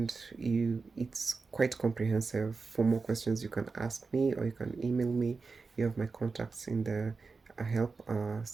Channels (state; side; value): quieter; left; 4.4 dB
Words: it's quite comprehensive. For more questions, you can ask me or you can email me. You have my contacts in the help